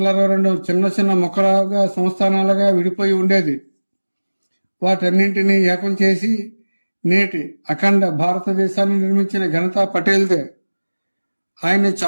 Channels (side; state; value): both; inverted; correlation -1.00